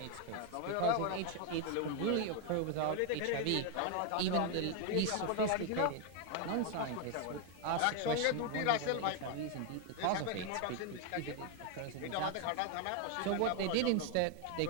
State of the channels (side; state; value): both; different; correlation 0.01